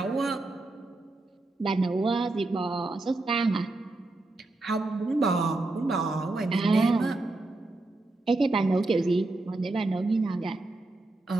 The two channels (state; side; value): quieter; left; 3.0 dB